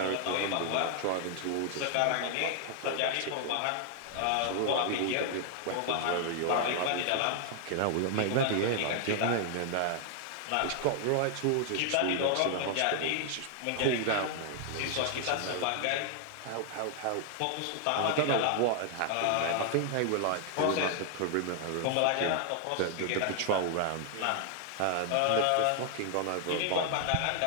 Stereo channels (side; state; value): both; different; correlation 0.00